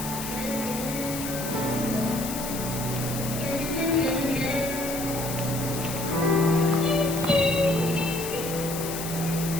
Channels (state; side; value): noise; left; hiss, 7 dB below the sound